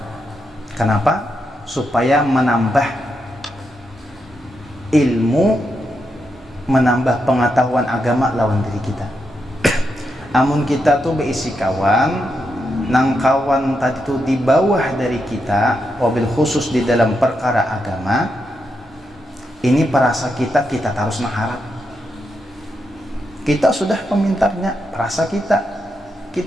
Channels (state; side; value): normal; both; correlation 0.84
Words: Kenapa? Supaya menambah ilmu, menambah pengetahuan agama lawan diri kita. Amun kita tuh berisi kawan nang kawan tadi tuh di bawah dari kita, wabil khusus di dalam perkara agama, ini perasa kita harus mengharap. Kita sudah pemintarnya, perasa